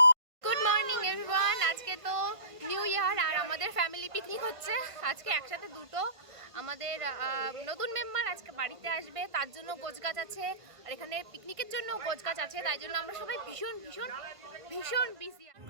Good morning everyone. আজকে তো নিউ ইয়ার আর আমাদের ফ্যামিলি পিকনিক হচ্ছে আজকে একসাথে দুটো। আমাদের নতুন মেম্বার আজকে বাড়িতে আসবে, তার জন্য গোছগাছ আছে, আর এখানে পিকনিকের জন্য গোছগাছ আছে, তাই জন্য আমরা সবাই ভীষণ ভীষণ ভীষণ বিজি।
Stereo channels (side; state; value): left; late; 1.5 ms